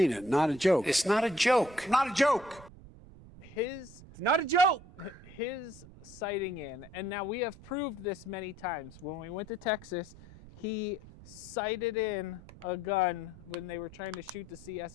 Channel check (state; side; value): noise; right; rumble, 19 dB below the sound